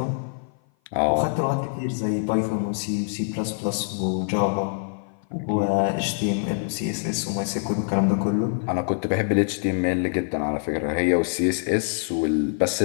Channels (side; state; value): right; silent; 56 dB below the other